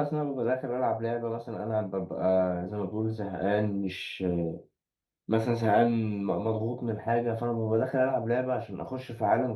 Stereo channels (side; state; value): both; identical; correlation 1.00